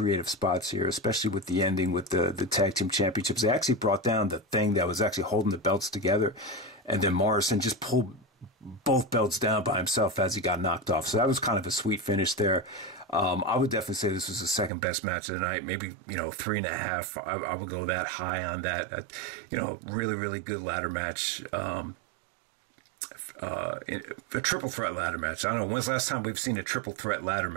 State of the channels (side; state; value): left; drops out; at 14.7 s